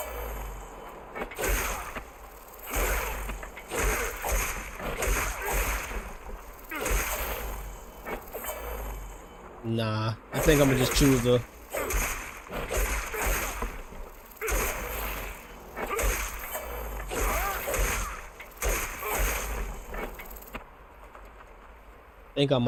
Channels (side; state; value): both; identical; correlation 1.00